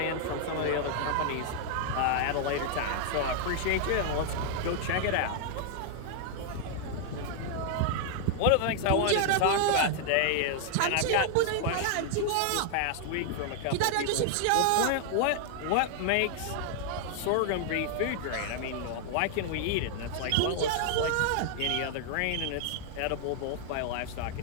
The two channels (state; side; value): different; both; correlation 0.00